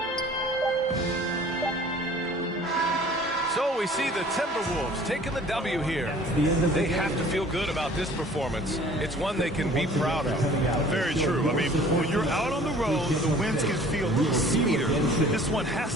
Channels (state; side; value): normal; both; correlation 0.50